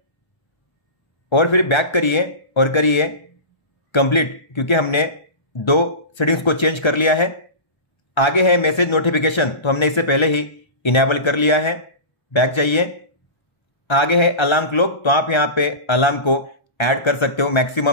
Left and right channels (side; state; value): right; late; 1.3 ms